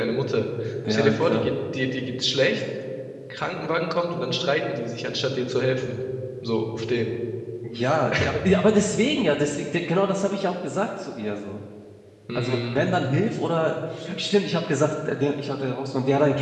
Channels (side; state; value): both; identical; correlation 1.00